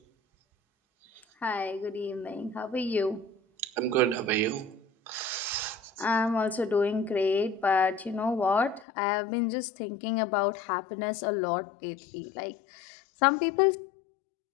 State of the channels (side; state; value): right; drops out; at 8.8 s